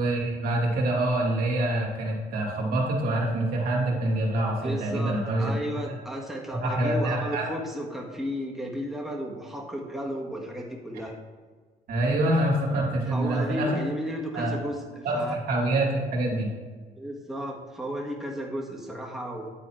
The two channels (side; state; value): both; normal; correlation 0.68